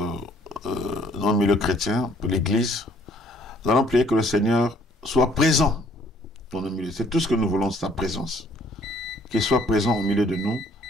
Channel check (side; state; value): both; normal; correlation 0.61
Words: dans le milieu chrétien, pour l'Église. Nous allons prier que le Seigneur soit présent dans le milieu. C'est tout ce que nous voulons, sa présence. Qu'il soit présent au milieu de nous